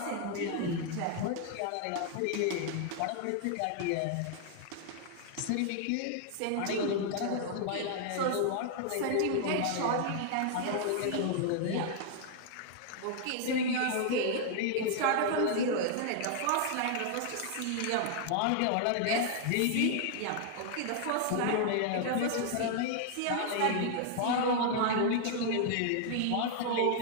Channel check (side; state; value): both; different; correlation 0.00